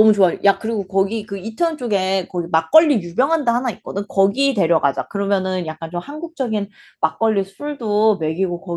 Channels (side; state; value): both; identical; correlation 1.00